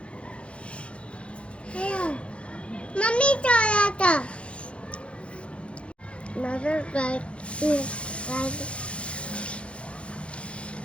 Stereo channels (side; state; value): right; late; 0.060 ms